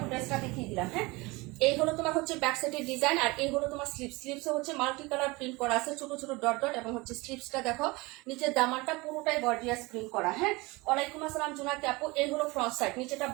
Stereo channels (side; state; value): left; quieter; 23.7 dB